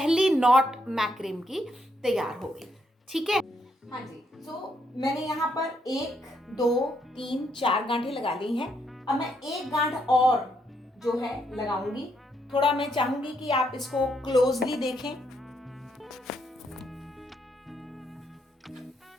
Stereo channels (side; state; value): both; normal; correlation 0.76